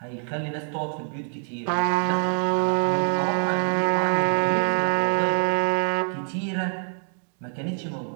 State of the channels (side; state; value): left; silent; 62 dB below the other